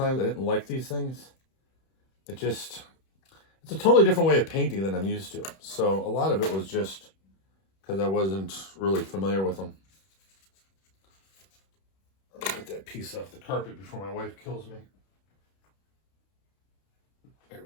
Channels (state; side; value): late; right; 31 ms